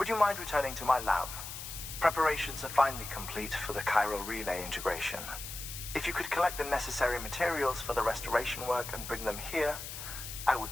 you mind returning to my lab? Preparations are finally complete for the chiral relay integration. If you could collect the necessary materials for the restoration work and bring them here, I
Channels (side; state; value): left; noise; hiss, 9 dB below the sound